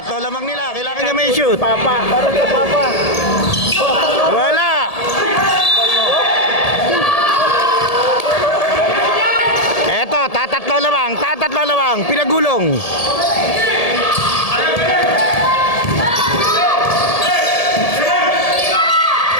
lamang nila. Kailangan niya may shoot. Papa. Parang kay Papa. Wala. Eto, tatatlo lamang. Pinagulong.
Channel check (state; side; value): late; right; 1.7 ms